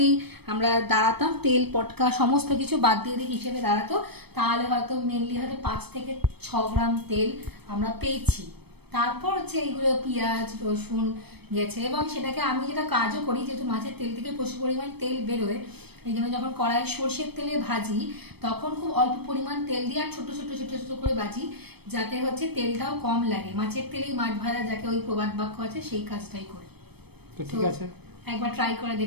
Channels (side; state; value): left; late; 0.97 ms